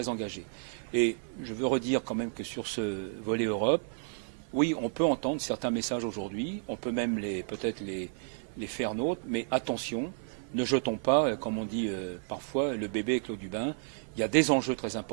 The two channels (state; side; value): silent; left; 57 dB below the other